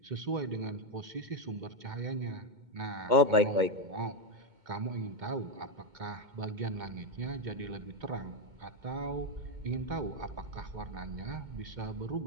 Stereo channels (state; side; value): late; left; 2.1 ms